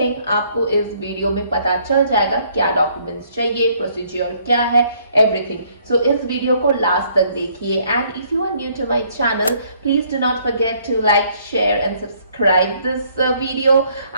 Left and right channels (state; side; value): inverted; both; correlation -0.65